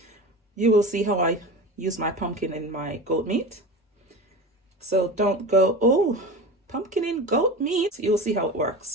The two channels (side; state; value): both; normal; correlation 0.30